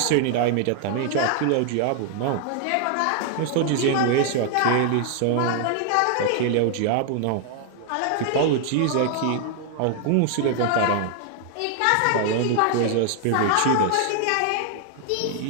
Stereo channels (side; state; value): both; different; correlation 0.00